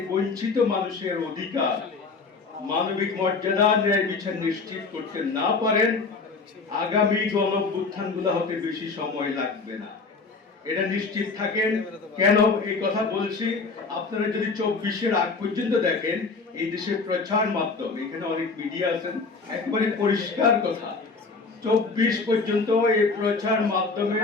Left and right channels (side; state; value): right; quieter; 4.2 dB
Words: বঞ্চিত মানুষের অধিকার, মানবিক মর্যাদা, ন্যায় বিচার নিশ্চিত করতে না পারেন, আগামী গণঅভ্যুত্থানগুলো হতে বেশি সময় লাগবে না, এটা নিশ্চিত থাকেন। কেন এই কথা বলছি, আপনারা যদি 24-এর আগ পর্যন্ত দেখেন, এই দেশের প্রচার মাধ্যম, এখানে অনেক মিডিয়া আছেন, একবারে পরিষ্কার কথা, 24 পর্যন্ত এই প্রচার